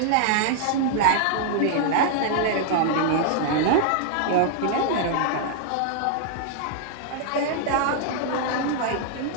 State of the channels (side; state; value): both; different; correlation -0.01